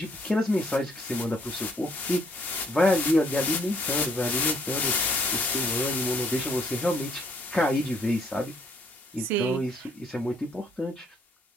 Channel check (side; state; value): both; normal; correlation 0.67